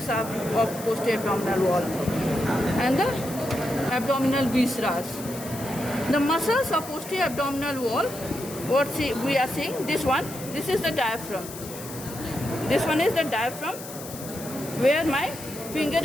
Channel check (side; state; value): left; noise; hiss, 13 dB below the sound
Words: of posterior abdominal wall, and the abdominal viscera. The muscles of posterior abdominal wall, what we are seeing, this is the diaphragm. This one is the diaphragm, where my finger